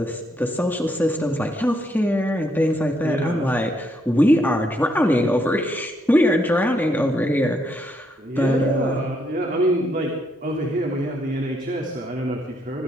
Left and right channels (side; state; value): both; normal; correlation 0.75